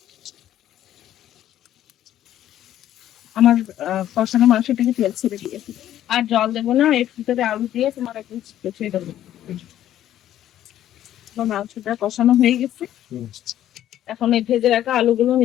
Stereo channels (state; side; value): quieter; right; 12.0 dB